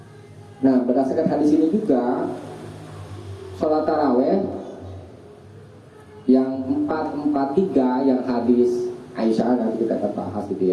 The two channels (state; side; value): identical; both; correlation 1.00